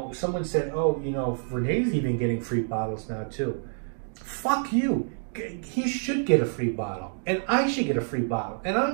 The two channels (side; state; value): left; silent; 60 dB below the other